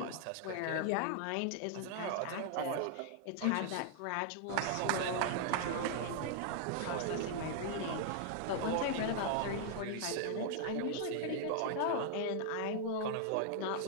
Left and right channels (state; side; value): different; both; correlation -0.01